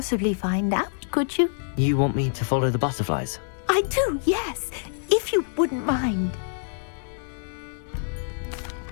find out, could you? You want me to follow the butterflies? I do, yes, if you wouldn't mind.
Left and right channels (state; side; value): silent; right; digital silence